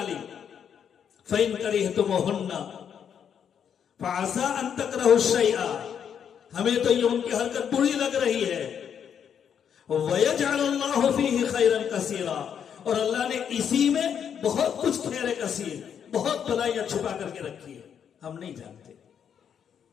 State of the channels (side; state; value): right; quieter; 8.1 dB